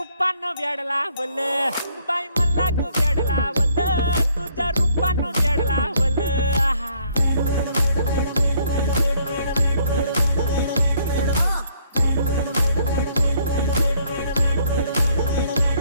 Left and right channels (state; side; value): inverted; both; correlation -0.66